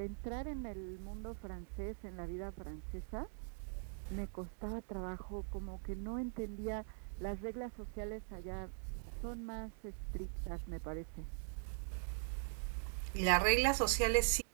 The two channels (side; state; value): left; silent; digital silence